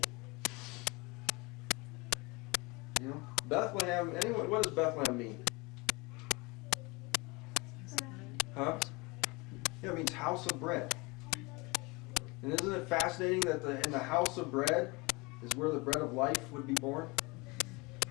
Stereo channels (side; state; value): right; quieter; 26.1 dB